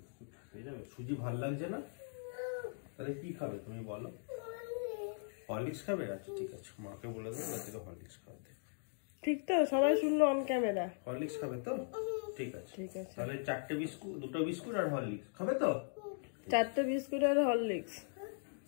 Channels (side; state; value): right; silent; digital silence